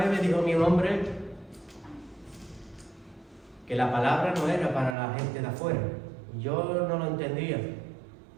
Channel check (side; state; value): left; drops out; at 5.0 s